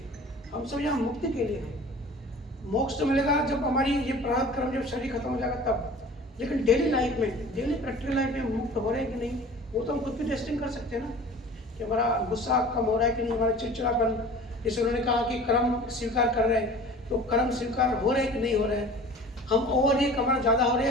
हम सब यहाँ मुक्ति के लिए हैं। मोक्ष तो मिलेगा जब हमारी ये प्रारब्ध कर्म, जब शरीर खत्म हो जाएगा तब। लेकिन डेली लाइफ में, डेली प्रैक्टिकल लाइफ में मुक्त हो रहे हैं कि नहीं, वो तो हम खुद भी टेस्टिंग कर सकते हैं ना, कि हमारा गुस्सा कम हो रहा है कि नहीं, हमारा चिड़चिड़ापन, जैसे उन्होंने कहा कि कर्म स्वीकार कर रहे हैं, तो कर्म स्वीकार हो रहे हैं कि नहीं हो रहे हैं। हम ओवर रिएक्ट हमारा ज़्यादा हो रहा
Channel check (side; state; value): both; normal; correlation 0.43